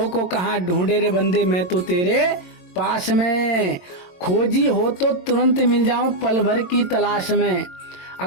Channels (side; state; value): right; late; 22 ms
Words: को कहाँ ढूंढे रे बंदे, मैं तो तेरे पास में। खोजी हो तो तुरंत मिल जाऊं पल भर की तलाश में।